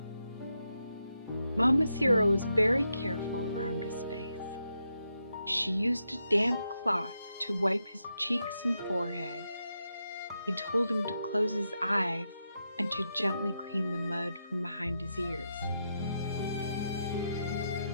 Mama Sierra was very careful around his face. She used a damp cloth to wipe his cheeks and forehead. He told him to close his eyes and to gently clean the mud from behind his ears.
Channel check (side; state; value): both; inverted; correlation -0.84